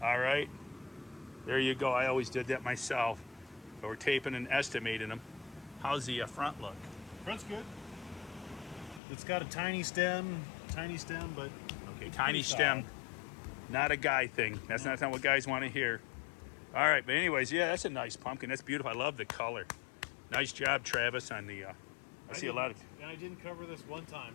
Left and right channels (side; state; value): right; drops out; at 9.0 s